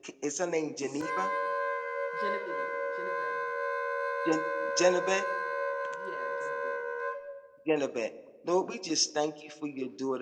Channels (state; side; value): identical; both; correlation 1.00